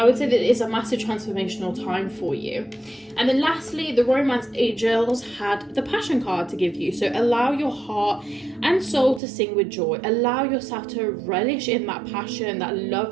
would say that it's a massive transformational time for you. And then lastly, the Romance Angels had the Passion card to give you. So allow your heart and soul to sing with joy. Allow yourself to relish in that passion, that love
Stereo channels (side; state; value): left; drops out; at 9.2 s